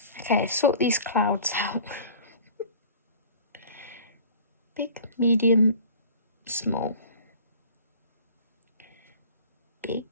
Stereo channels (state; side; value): inverted; both; correlation -0.44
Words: Okay, sort these clouds out. Big, medium, small. Big,